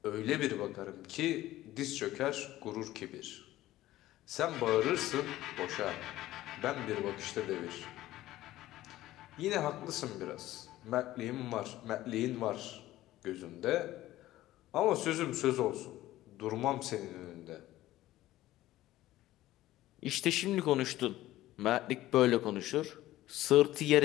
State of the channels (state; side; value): quieter; right; 15.4 dB